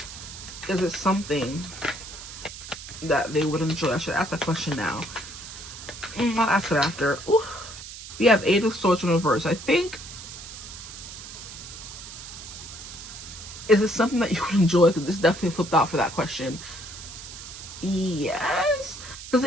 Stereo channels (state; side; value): noise; right; hiss, 12 dB below the sound